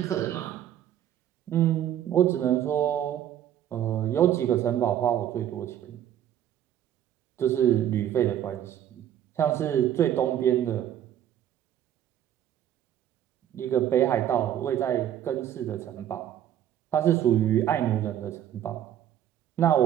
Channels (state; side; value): quieter; left; 10.9 dB